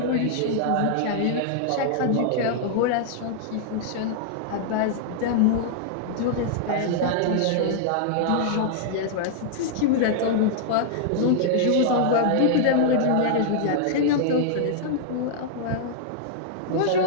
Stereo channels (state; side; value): different; both; correlation -0.01